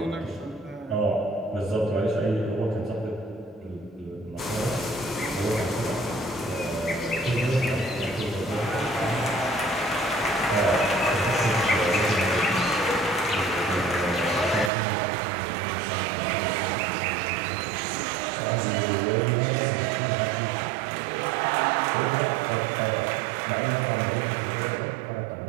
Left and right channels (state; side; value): drops out; left; at 14.7 s